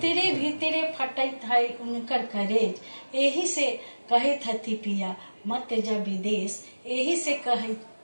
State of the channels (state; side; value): inverted; both; correlation -1.00